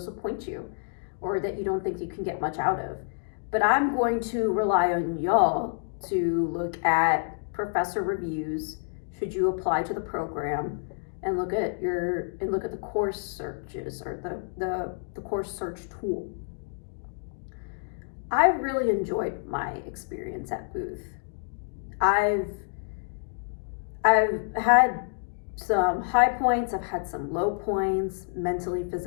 you or that you don't think you can get much out of. But I'm going to rely on y'all to look at professor reviews should you apply to the program, and look at the course searches or the course search tool. I've really enjoyed my experience at Booth. I've had some high points, I've had some low points, mentally,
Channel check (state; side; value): silent; right; digital silence